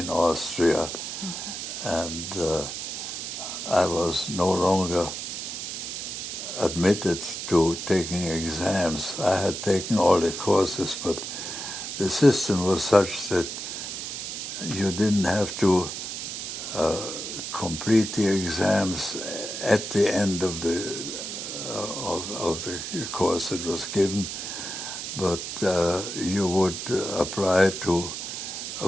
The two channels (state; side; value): noise; right; hiss, 6 dB below the sound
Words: Austria, and I was no longer admitted to taking exams. I had taken all the courses, but the system was such that you didn't have to complete the exams at the end of the course that was given, but you would apply to